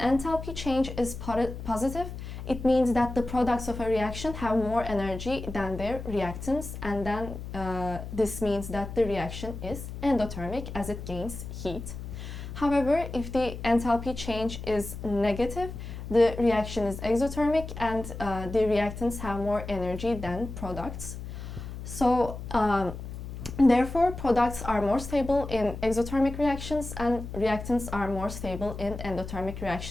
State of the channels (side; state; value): left; noise; hum, 9 dB below the sound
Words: change is positive, it means that the products of a reaction have more energy than their reactants, and then this means that the reaction is endothermic as it gains heat. However, if the enthalpy change is negative, the reaction is exothermic and the reactants have more energy than products. So therefore, products are more stable in exothermic reactions and reactants are more stable in endothermic